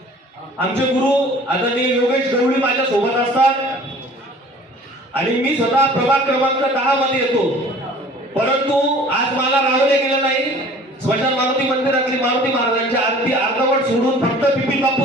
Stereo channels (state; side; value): normal; both; correlation 0.49